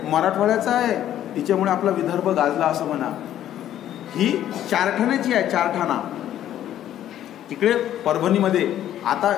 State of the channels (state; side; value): quieter; right; 11.6 dB